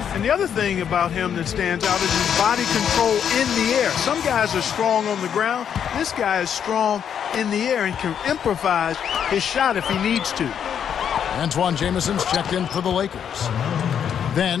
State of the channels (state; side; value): quieter; right; 8.4 dB